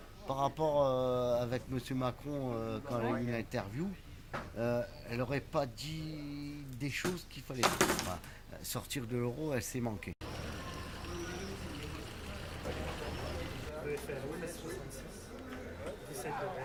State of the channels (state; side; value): identical; both; correlation 1.00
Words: par rapport avec M. Macron quand elle a eu une interview. Elle n'aurait pas dit des choses qu'il fallait dire. Enfin, sortir de l'euro, elle s'est manquée. EFN 66, 17 de